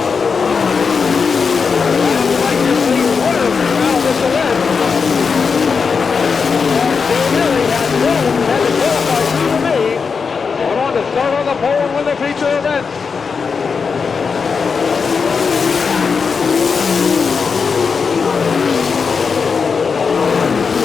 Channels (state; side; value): quieter; right; 5.4 dB